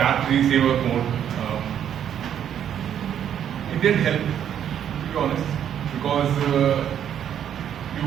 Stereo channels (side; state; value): left; quieter; 9.5 dB